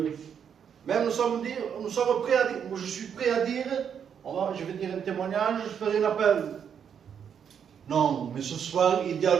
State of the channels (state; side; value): quieter; left; 7.8 dB